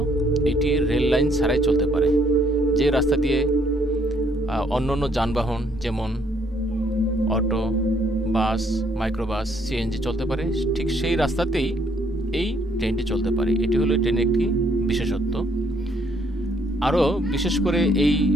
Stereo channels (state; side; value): normal; both; correlation 0.67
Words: এটি রেল লাইন ছাড়াই চলতে পারে। যে রাস্তা দিয়ে অন্যান্য যানবাহন যেমন অটো, বাস, মাইক্রোবাস, সিএনজি চলতে পারে, ঠিক সেই রাস্তাতেই এই ট্রেনটি চলতে পারে। এটি হলো ট্রেনের একটি বিশেষত্ব। আরও বিশেষ করে এই